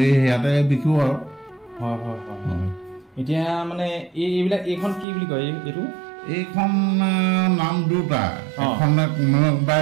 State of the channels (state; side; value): drops out; left; at 5.1 s